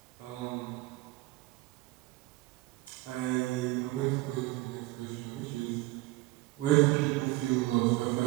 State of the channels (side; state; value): left; quieter; 19.6 dB